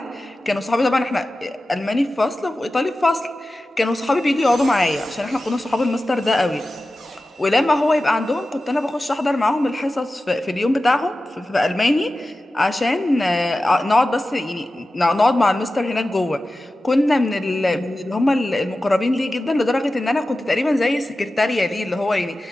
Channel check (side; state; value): both; normal; correlation 0.94